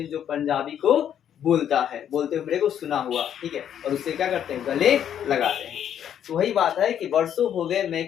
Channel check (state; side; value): quieter; right; 9.6 dB